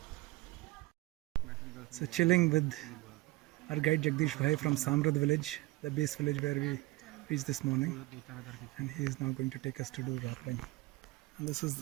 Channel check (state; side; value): quieter; left; 20.6 dB